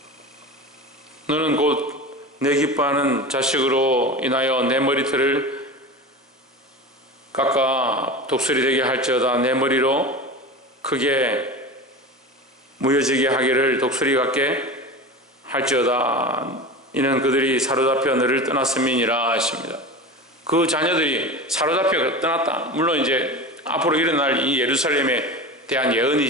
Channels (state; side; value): normal; both; correlation 0.29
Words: 너는 곧 내 기뻐하는 자식으로 인하여 내 머리털을 깎아 독수리 되게 할지어다. 내 머리로 크게 무뎌지게 하기를 독수리 같게 할지어다. 이는 그들이 사로잡혀 너를 떠났음이니라 하십니다. 그 자녀들이 사로잡혀 떠났다. 물론 이제 앞으로 일어날 이 예루살렘에 대한